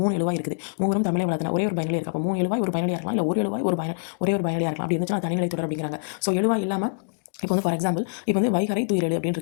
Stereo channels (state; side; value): silent; right; digital silence